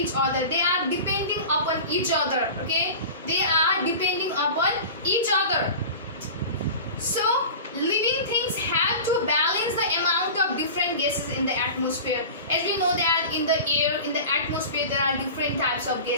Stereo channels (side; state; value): both; inverted; correlation -0.34